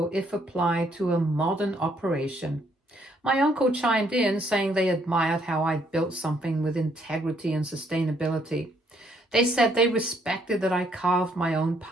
if applied to a modern operation. My uncle chimed in, saying they admired how I built something with integrity and sustainability. They said they respected that I carved my own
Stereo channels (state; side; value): normal; both; correlation 0.69